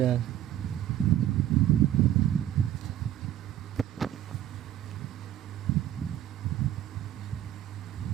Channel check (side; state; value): left; quieter; 11.9 dB